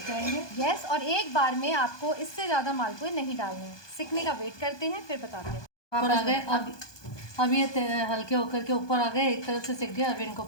जाएंगे। यस, और एक बार में आपको इससे ज़्यादा मालपुए नहीं डालने हैं। सीखने का वेट करते हैं, फिर बताते हैं। ऊपर आ गए, अब ये हल्के होकर के ऊपर आ गए, एक तरफ से सिक गए। अब इनको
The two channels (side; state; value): right; late; 1.2 ms